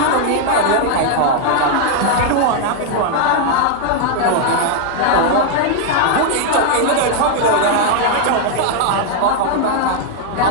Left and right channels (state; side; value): different; both; correlation 0.00